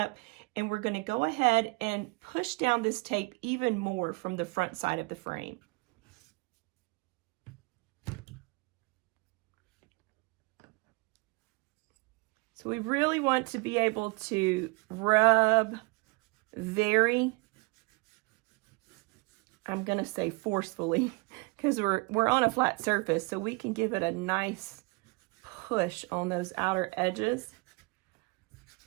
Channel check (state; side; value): quieter; left; 28.8 dB